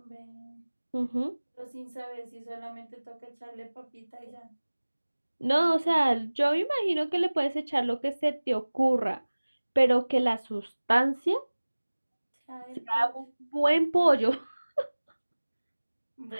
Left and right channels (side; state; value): both; inverted; correlation -1.00